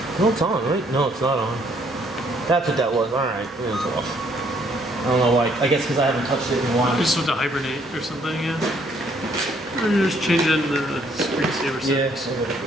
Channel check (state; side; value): noise; left; hum, 29 dB below the sound